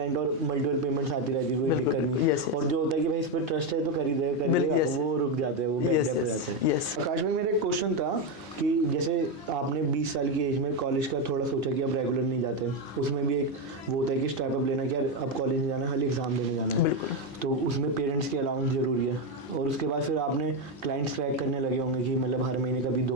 और मल्टीपल पेमेंट्स आती रहती है, कोई दिक्कत नहीं। और जो होता है कि भाई इस पर ट्रस्ट है तो कर ही देगा, वो रुक जाते हैं, वो बैक डेप हो जाते हैं। आकाश भाई, मेरा एक क्वेश्चन था कि जैसे आपने 20 साल की एज में कॉलेज का थोड़ा सोचा कि अब रेगुलर नहीं जाते, उसमें भी एक वो होता है कि स्टेप अप लेना कि यार अब कॉलेज नहीं जाना, खाली एग्जाम देने जाना है, तो उसमें पेरेंट्स की अलाउंस जरूरी है, और उसके बाद फिर आपने क्लाइंट्स क्रैक करने लगे होंगे कि मतलब हर महीने कभी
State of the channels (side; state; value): both; normal; correlation 0.08